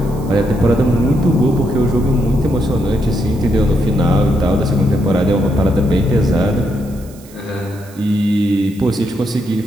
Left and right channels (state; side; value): noise; right; hiss, 24 dB below the sound